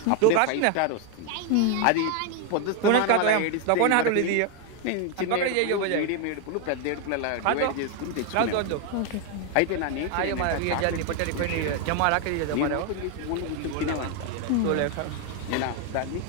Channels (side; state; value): both; different; correlation 0.01